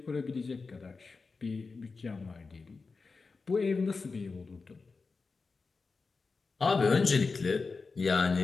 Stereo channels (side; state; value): right; quieter; 4.3 dB